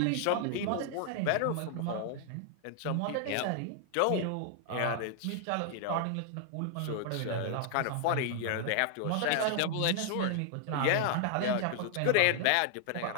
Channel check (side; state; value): both; different; correlation 0.00